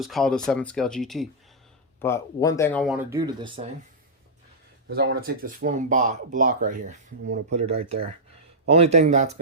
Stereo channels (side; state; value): both; normal; correlation -0.10